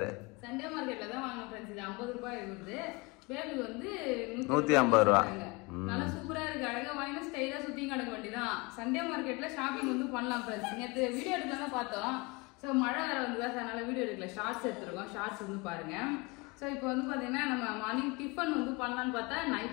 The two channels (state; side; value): quieter; right; 26.2 dB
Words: சண்டே மார்க்கெட்ல தான் வாங்க ஃப்ரெண்ட்ஸ். இது 50 ரூபாய் இருக்குது. பேபி வந்து 150 ரூபா. நல்லா சூப்பரா இருக்கு. அழகா வாங்கி ஸ்டைலா சுத்தி கிடக்க வேண்டியதான். சண்டே மார்க்கெட்ல ஷாப்பிங் வந்து பண்ணலாம் ஃப்ரெண்ட்ஸ். நேற்று வீடியோ எடுக்கலாம் தான் பார்த்தோம். ஸோ மழை வேற வந்து அதனால வீடியோ எடுக்கல. ஷார்ட்ஸ் எடுத்துருக்கோம். ஷார்ட்ஸ் வந்து பாருங்க. ஸோ இப்போ வந்து பாத்தீங்கன்னா நம்ம மார்னிங் டிஃபன் வந்து பண்ணலான்னு பார்த்தா